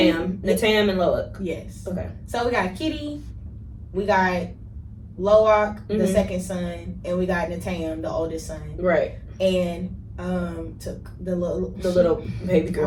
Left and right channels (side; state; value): both; identical; correlation 1.00